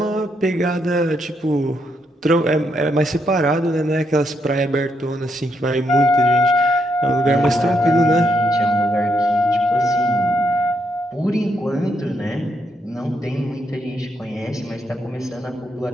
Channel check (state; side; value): normal; both; correlation 0.78